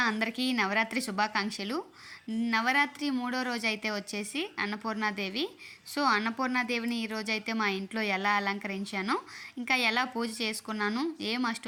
అందరికీ నవరాత్రి శుభాకాంక్షలు. నవరాత్రి మూడో రోజైతే వచ్చేసి అన్నపూర్ణాదేవి. సో అన్నపూర్ణాదేవిని ఈరోజైతే మా ఇంట్లో ఎలా అలంకరించానో, ఇంకా ఎలా పూజ చేసుకున్నాను, ఏం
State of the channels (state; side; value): identical; both; correlation 1.00